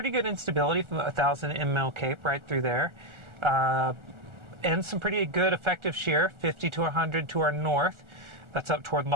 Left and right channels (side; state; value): left; late; 1.4 ms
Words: good instability from 1,000 ml cape right through there. And some pretty good effective shear, 50 to 100 to our north. That's up toward